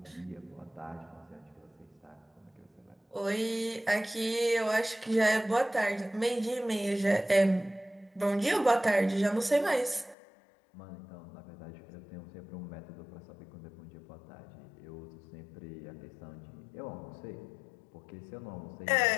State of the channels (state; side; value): drops out; right; at 10.2 s